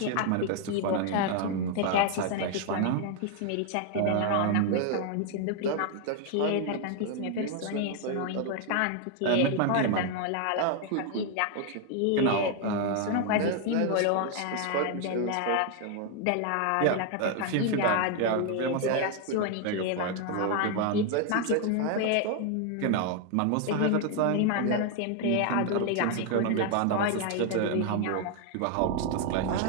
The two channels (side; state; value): both; different; correlation 0.00